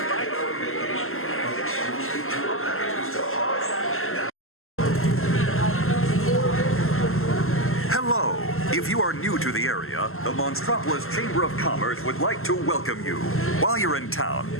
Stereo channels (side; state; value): right; late; 0.62 ms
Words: Hello. If you are new to the area, the Monstropolis Chamber of Commerce would like to welcome you. While you're in town,